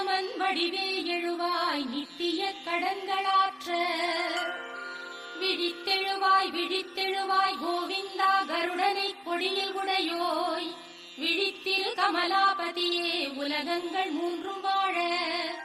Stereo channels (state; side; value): identical; both; correlation 1.00